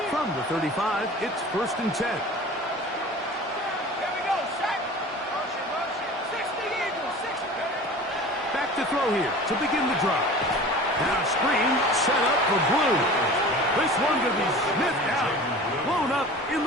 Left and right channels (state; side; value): normal; both; correlation 0.39